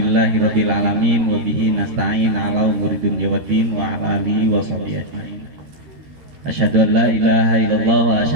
alamin wa bihi nasta'in ala umuri dunya waddin wa ala alihi wa sahbihi ajmain. Asyhadu an la ilaha illallah wa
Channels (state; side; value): late; left; 13 ms